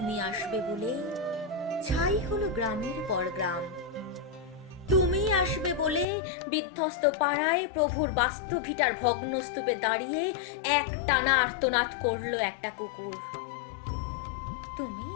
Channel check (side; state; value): right; drops out; at 6.1 s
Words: আসবে বলে ছাই হলো গ্রামের পর গ্রাম। তুমি আসবে বলে বিধ্বস্ত পাড়ায় প্রভুর বাস্তভিটার ভগ্নস্তূপে দাঁড়িয়ে এক টানা আর্তনাদ করলো একটা কুকুর। তুমি